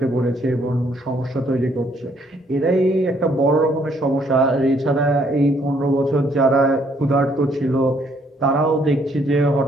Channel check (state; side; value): normal; both; correlation 0.67